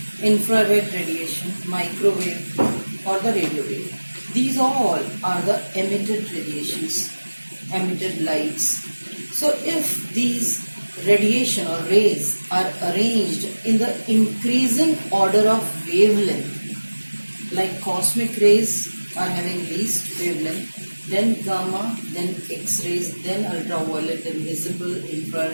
infrared radiation, microwave or the radio wave. These all are the emitted radiations, emitted lights. So if these radiation or rays are arranged in the increasing order of wavelength, like cosmic rays are having least wavelength, then gamma, then X-rays, then ultraviolet, then visible,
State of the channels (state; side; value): inverted; both; correlation -1.00